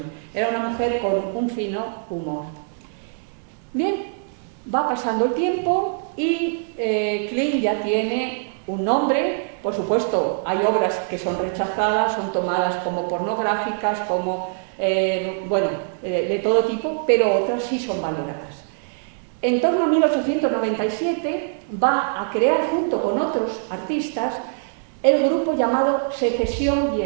Era una mujer con un fino humor. Bien, va pasando el tiempo y Klimt ya tiene un nombre, por supuesto, hay obras que son rechazadas, son tomadas como pornográficas, como, de todo tipo, pero otras sí son valoradas. En torno a 1897 va a crear, junto con otros artistas, el grupo llamado Secesión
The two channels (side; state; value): left; silent; digital silence